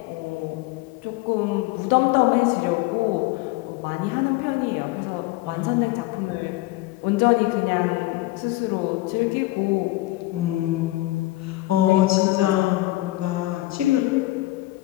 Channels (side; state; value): right; quieter; 18.6 dB